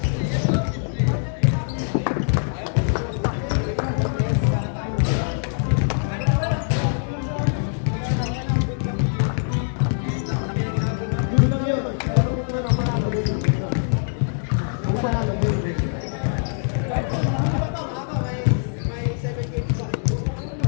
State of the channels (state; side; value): silent; right; digital silence